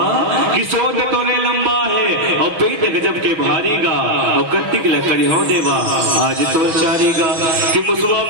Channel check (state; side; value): late; left; 6.3 ms